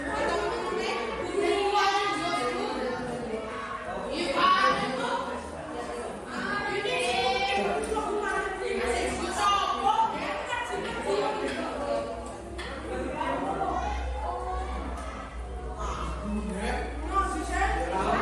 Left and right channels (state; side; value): identical; both; correlation 1.00